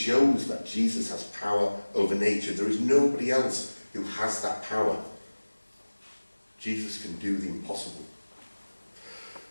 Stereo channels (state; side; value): inverted; both; correlation -1.00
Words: that Jesus has power over nature. There is nobody else who has that power. Jesus can do the impossible.